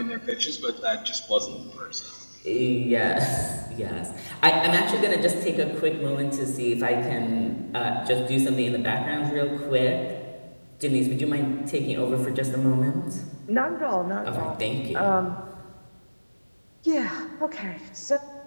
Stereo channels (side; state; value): both; inverted; correlation -1.00